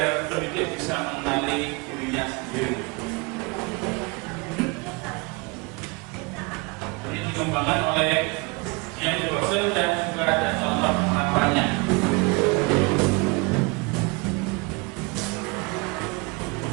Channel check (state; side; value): quieter; left; 28.9 dB